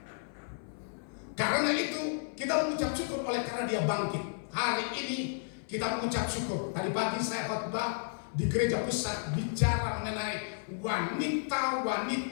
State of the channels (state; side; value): silent; right; 56 dB below the other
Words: Karena itu kita mengucap syukur oleh karena Dia bangkit. Hari ini kita mengucap syukur. Tadi pagi saya khotbah di gereja pusat bicara mengenai